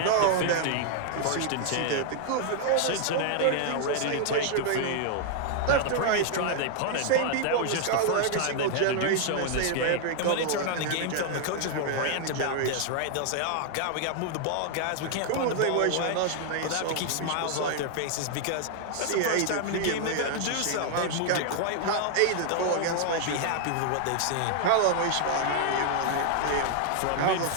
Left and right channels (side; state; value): both; different; correlation 0.00